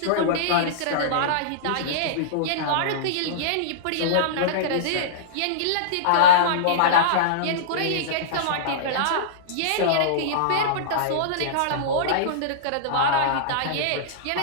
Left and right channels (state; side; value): different; both; correlation -0.03